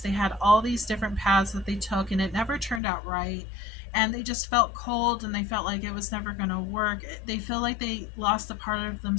They had all these different paths that they took, and it never turned out right. And they just felt cold, and they felt like it was never going to work. They feel like they lost a part of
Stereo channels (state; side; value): drops out; right; at 2.8 s